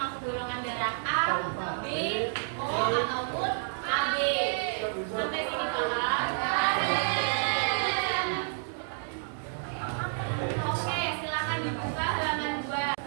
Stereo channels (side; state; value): left; silent; digital silence